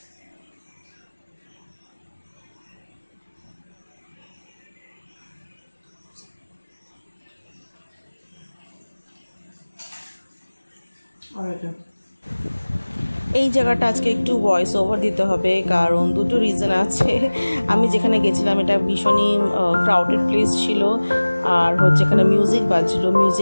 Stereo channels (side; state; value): both; inverted; correlation -1.00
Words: এই জায়গাটা আজকে একটু ভয়েস ওভার দিতে হবে, কারণ দুটো রিজন আছে। আমি যেখানে গেছিলাম এটা ভীষণই ক্রাউডেড প্লেস ছিল, আর হচ্ছে এখানে মিউজিক বাজছিল,